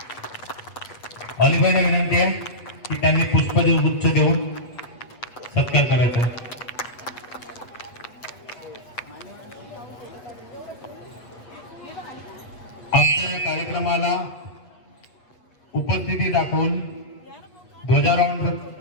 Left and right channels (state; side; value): late; right; 8.2 ms